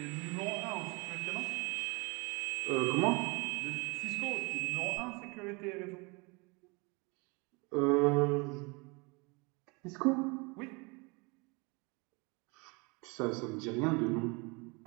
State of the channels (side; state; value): left; quieter; 28.8 dB